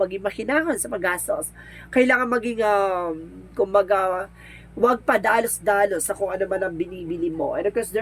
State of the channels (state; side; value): identical; both; correlation 1.00